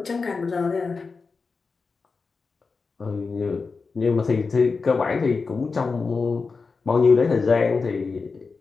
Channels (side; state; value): right; quieter; 4.5 dB